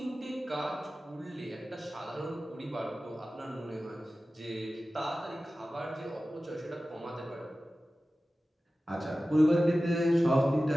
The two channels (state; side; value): normal; both; correlation 0.95